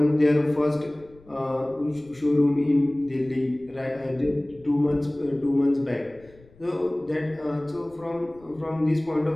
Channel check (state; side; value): noise; left; rumble, 27 dB below the sound